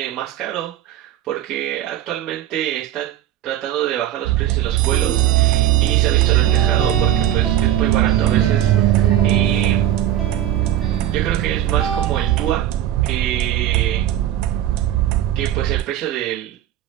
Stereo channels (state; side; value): quieter; left; 12.4 dB